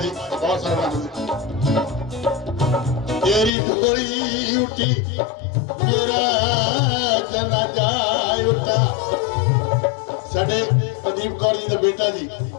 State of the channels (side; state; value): right; drops out; at 3.5 s